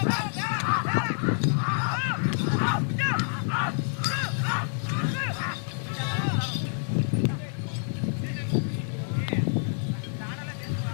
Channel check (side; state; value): right; silent; digital silence